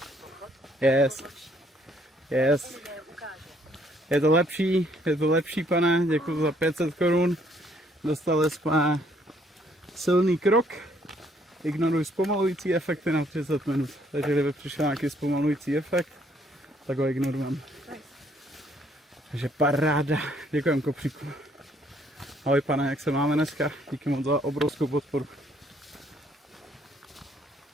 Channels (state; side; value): normal; both; correlation 0.66